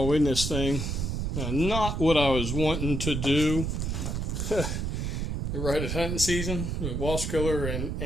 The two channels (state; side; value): noise; right; rumble, 1 dB below the sound